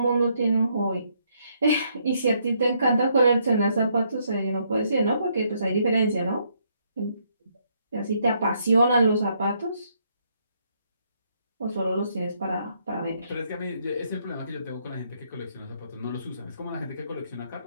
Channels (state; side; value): inverted; both; correlation -0.72